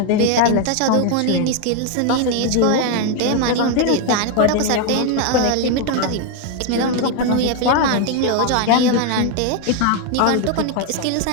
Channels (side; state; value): both; different; correlation 0.01